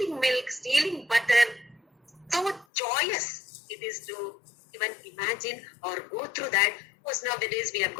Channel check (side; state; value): right; drops out; at 2.7 s